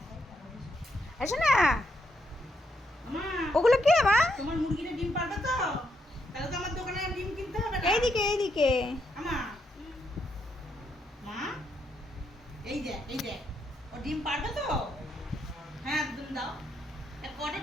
এসো না। ওগুলো কে মা? তোমার মুরগিটা ডিম পারবে তো? তাহলে তো আমার দোকানে ডিম কিনতে হবে না। এইদিকে এইদিকে। আমা মা, এই যে ও ডিম পারবে তো? হ্যাঁ ডিম দাও। কটা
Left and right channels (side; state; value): both; normal; correlation 0.78